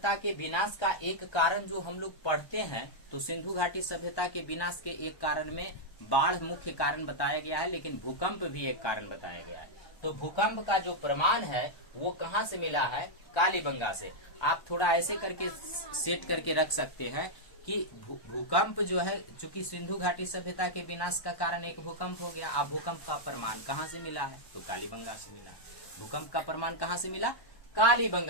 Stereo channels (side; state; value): right; late; 1.1 ms